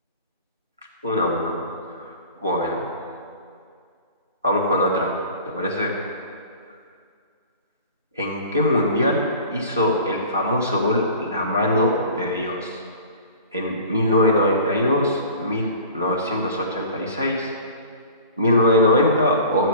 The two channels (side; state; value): both; inverted; correlation -0.42